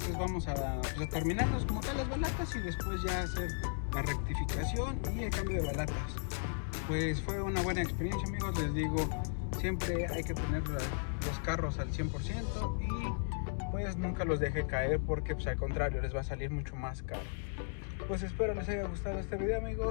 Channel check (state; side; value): silent; right; digital silence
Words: vamos a terminarnos como tal las balatas y después ya hacer la rectificación y el cambio de balatas. Pues fue una buena experiencia, amigos. Les digo, siempre hay que tener los carros al 100%, y pues nunca los deje caer, porque pues al contrario les va a salir mucho más caro. Pues espero les haya gustado este video,